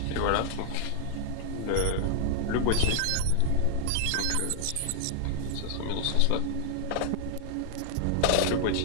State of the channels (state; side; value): different; both; correlation 0.00